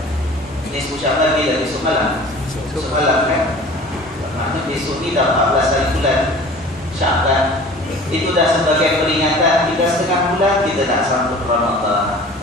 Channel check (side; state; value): both; normal; correlation 0.43